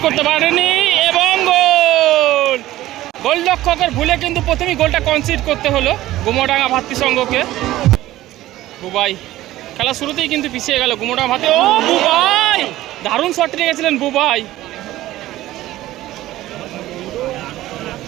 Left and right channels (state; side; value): quieter; left; 15.5 dB